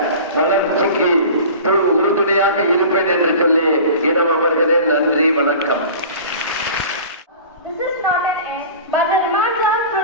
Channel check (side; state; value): both; inverted; correlation -0.38